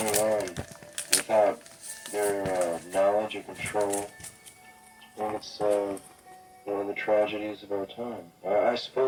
on without their knowledge or control. And it's one of the tragedies of our time. I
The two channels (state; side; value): identical; both; correlation 1.00